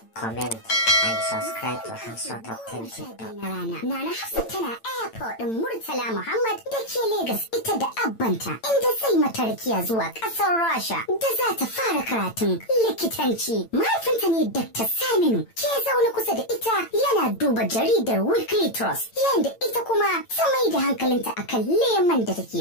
comment, and subscribe to Hausa Top 10 TikTok. Nana Hafsat tana airport ɗin Murtala Muhammad da ke Legas ita da abbanta inda zai mata rakiya zuwa ƙasar Rasha da za ta fara karatun likitanci. Mahaifinta ne Dr. Saminu ke zaune kusa da ita yana duba jaridar Weekly Trust yayin da ita kuma ta mai da hankalinta akan leman da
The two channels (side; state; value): right; late; 8.9 ms